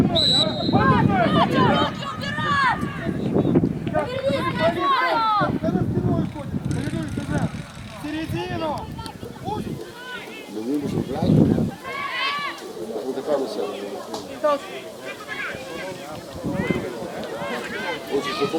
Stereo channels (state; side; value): identical; both; correlation 1.00